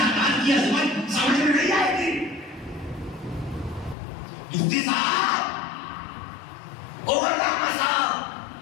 کی عظمت سمجھ میں نہیں آئے گی. مفتی صاحب، علامہ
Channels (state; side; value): drops out; right; at 4.0 s